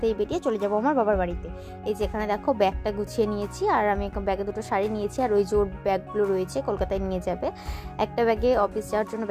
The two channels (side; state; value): both; identical; correlation 1.00